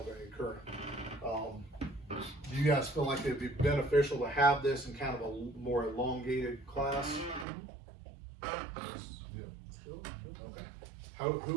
current. Do you guys feel like it'd be beneficial to have this in kind of a more elongated class? Yeah. Okay.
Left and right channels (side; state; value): left; drops out; at 7.5 s